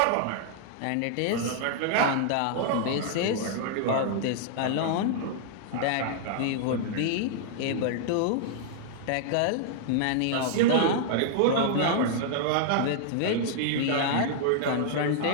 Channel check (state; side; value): different; both; correlation -0.01